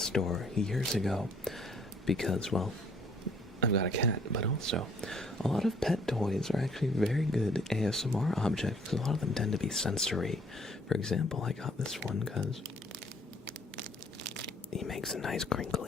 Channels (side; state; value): both; normal; correlation 0.61